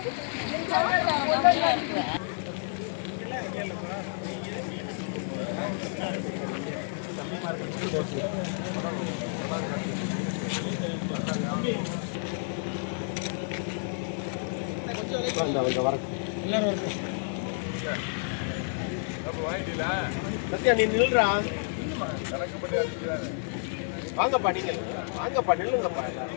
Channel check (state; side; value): silent; right; digital silence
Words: நீ நில்றா. வாங்கப்பா, நீங்க வாங்கப்பா, நில்லுங்கப்பா.